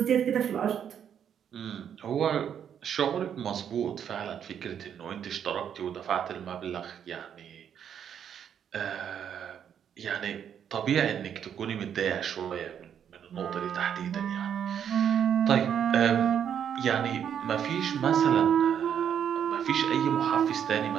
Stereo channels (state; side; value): quieter; left; 8.7 dB